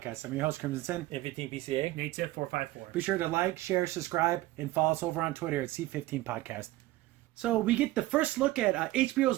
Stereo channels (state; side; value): quieter; left; 17.1 dB